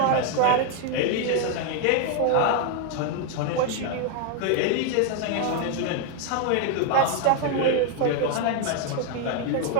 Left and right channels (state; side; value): different; both; correlation 0.00